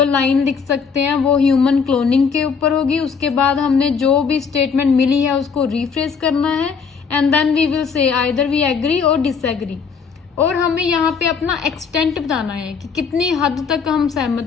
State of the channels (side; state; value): right; quieter; 5.9 dB